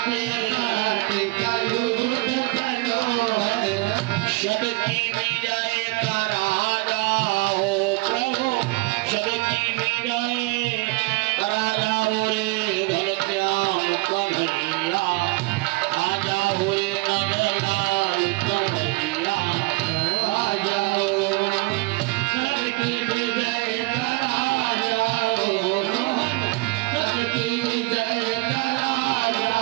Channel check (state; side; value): quieter; left; 23.9 dB